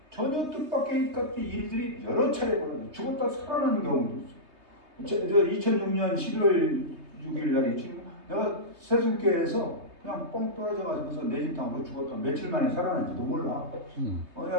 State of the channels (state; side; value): late; left; 3.2 ms